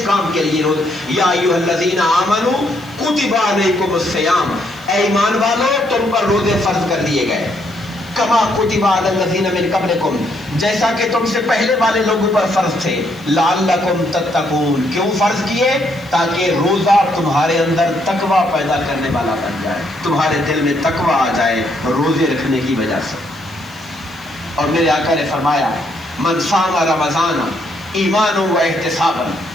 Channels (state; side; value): noise; left; hiss, 27 dB below the sound